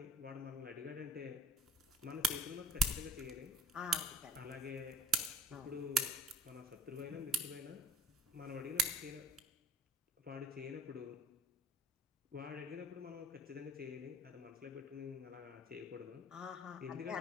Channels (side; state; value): both; normal; correlation 0.47